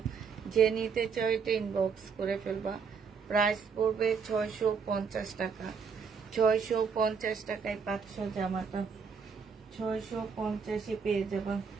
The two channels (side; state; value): left; quieter; 5.8 dB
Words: যে নিতে চাও এটা ইনবক্স করে ফেলবা। প্রাইস পড়বে 650 টাকা। 650 টাকায় পাচ্ছ জামাটা। 650-এ পেয়ে যাবা,